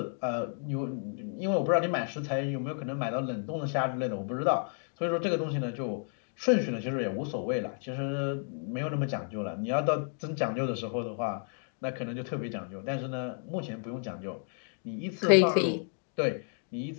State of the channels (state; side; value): silent; right; 57 dB below the other